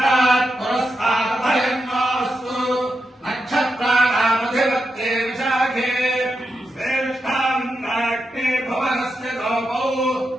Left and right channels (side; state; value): both; normal; correlation 0.87